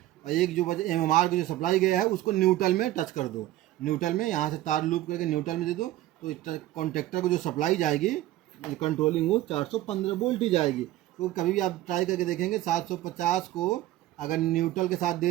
और एक जो वजह MMR की जो सप्लाई गया है उसको न्यूट्रल में टच कर दो। न्यूट्रल में यहाँ से तार लूप करके न्यूट्रल में दे दो, तो कॉन्ट्रैक्टर को जो सप्लाई जाएगी कंट्रोलिंग वो 415 वोल्ट ही जाएगी। तो कभी भी आप ट्राई करके देखेंगे 750 को अगर न्यूट्रल के साथ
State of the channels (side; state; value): left; quieter; 15.3 dB